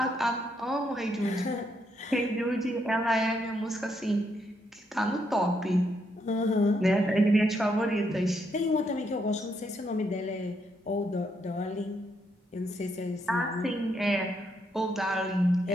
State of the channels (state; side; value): normal; both; correlation 0.76